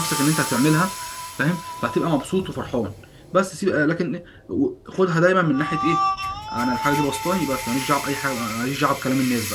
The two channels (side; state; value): both; identical; correlation 1.00